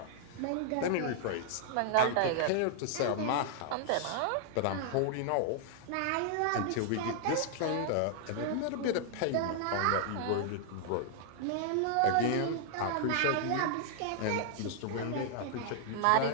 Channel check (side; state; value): both; different; correlation -0.01